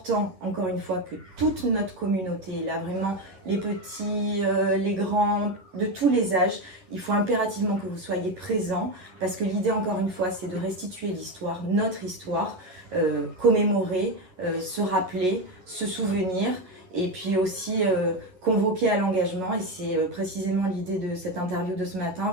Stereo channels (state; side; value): late; left; 11 ms